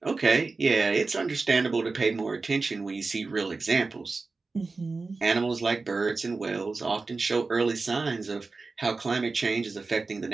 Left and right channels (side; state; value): left; quieter; 3.9 dB